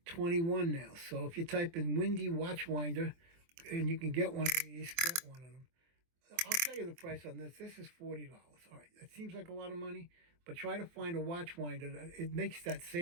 now, so if you type in Windy watch winder, and you can get one of these, get one of them. I'll tell you the price on this. This is $40. All right, that seems like a lot of money, but try to find a watch winder that it makes that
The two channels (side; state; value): left; late; 24 ms